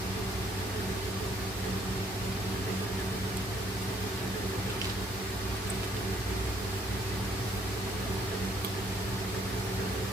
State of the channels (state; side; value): normal; both; correlation 0.66